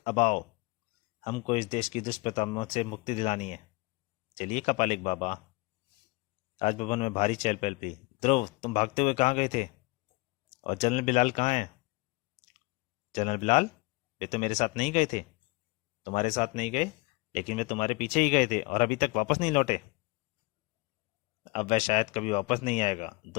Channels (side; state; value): right; quieter; 25.7 dB